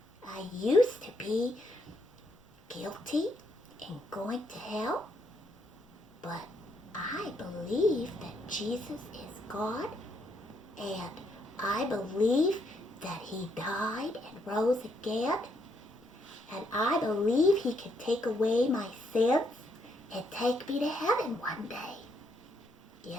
I used to be guilty and going to hell, but I believe that Jesus is God, and I believe that he died and rose again, and I believe he can take away my sins and take me to heaven one day.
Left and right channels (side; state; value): both; normal; correlation 0.75